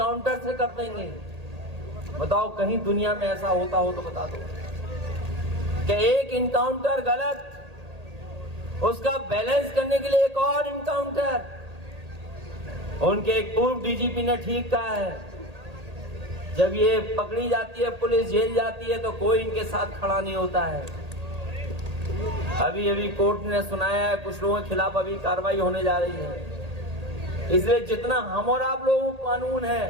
से कर देंगे। बताओ कहीं दुनिया में ऐसा होता हो तो बता दो कि एक इनकाउंटर गलत, उसका बैलेंस करने के लिए एक और इनकाउंटर। उनके एक पूर्व डीजीपी ने ठीक कहा है, जब ये पकड़ी जाती है, पुलिस जेल जाती है, तो कोई इनके साथ खड़ा नहीं होता है। अभी कोर्ट ने सुनाया है कुछ लोगों के खिलाफ अभी कार्रवाई होने जा रही है। इसलिए जितना हम और आप लोगों को कानून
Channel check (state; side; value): late; left; 1.8 ms